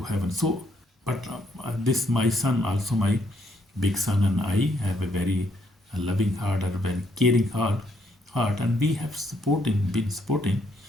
heaven. So, but this my son, also my big son, and I have a very loving heart, and a very caring heart, and we have been supporting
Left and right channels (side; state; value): both; normal; correlation 0.72